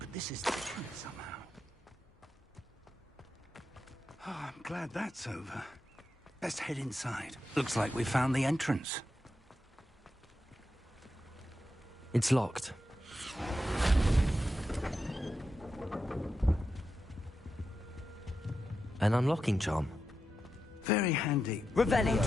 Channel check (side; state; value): both; normal; correlation 0.87